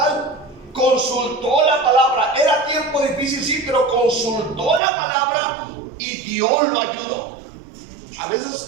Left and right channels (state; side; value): drops out; left; at 4.8 s